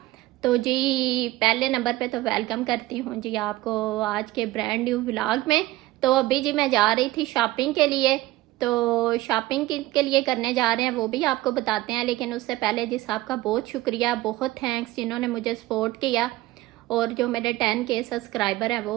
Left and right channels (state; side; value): quieter; left; 17.8 dB